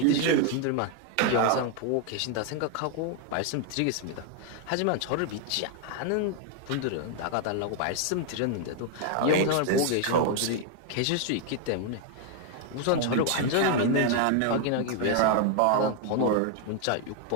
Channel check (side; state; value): both; different; correlation 0.00